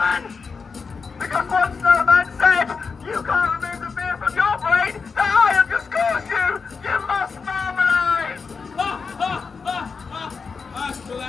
Because one snowman said, you can't remove the fear from your brain that I have just caused you! You must marmalade! That's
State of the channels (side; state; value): right; quieter; 5.1 dB